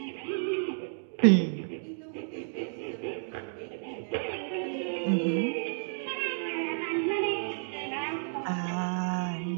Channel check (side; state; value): left; silent; digital silence